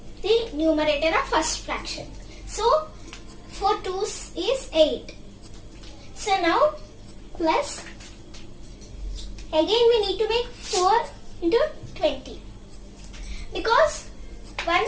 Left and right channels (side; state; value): both; identical; correlation 1.00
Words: the numerator of first fraction. So 4 2's is 8. So now plus, again we need to make 4 into 20 because